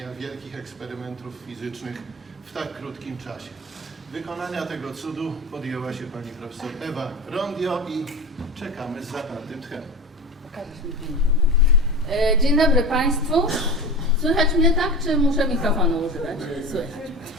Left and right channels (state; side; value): normal; both; correlation 0.28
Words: wielkich eksperymentów fizycznych w tak krótkim czasie. Wykonania tego cudu podjęła się pani profesor Ewa Rondio i czekamy z zapartym tchem. Dzień dobry Państwu. Słychać mnie tak, czy muszę mikrofonu używać? Słychać.